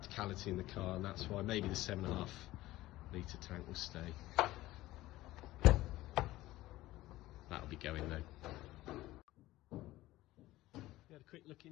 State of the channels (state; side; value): quieter; right; 16.9 dB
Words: in the car, and that's why maybe the 7.5 litre tank will stay. That'll be going though. We had a quick look